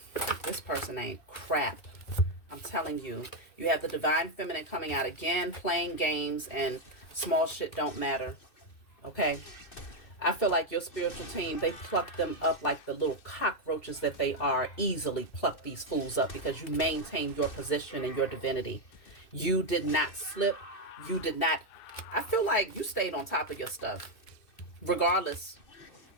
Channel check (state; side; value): late; right; 2.7 ms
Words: this person ain't crap. I'm telling you. You have the divine feminine coming out again, playing games, and small shit don't matter. Okay? I feel like your spiritual team, they pluck them up like the little cockroaches that they are. Easily pluck these fools up because you maintain your position and your divinity. You did not slip. You did not. I feel like you stayed on top of your stuff. Regardless,